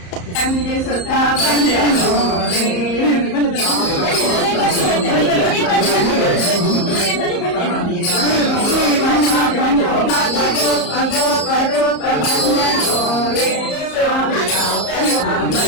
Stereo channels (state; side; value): late; right; 34 ms